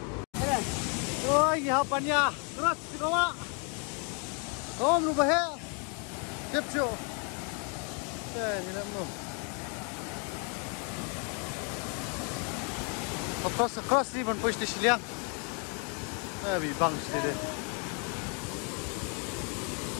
Oh, ya hapannya. Terus dibawa. Oh, berubah ya. Kepco. Ni nak mau. Across ni ban poi stesen liang. Bi bang sini.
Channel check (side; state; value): right; quieter; 37.6 dB